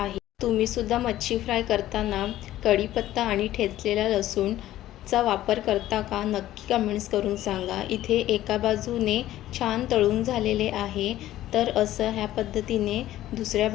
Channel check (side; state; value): right; quieter; 14.1 dB